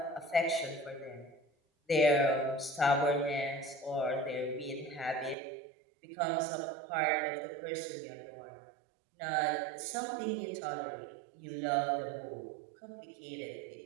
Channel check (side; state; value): left; drops out; at 5.4 s